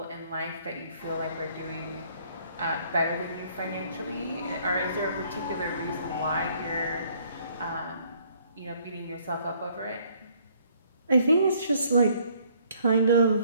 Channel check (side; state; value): both; inverted; correlation -0.63